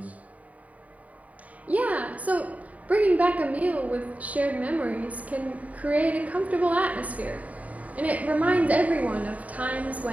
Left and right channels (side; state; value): left; late; 0.070 ms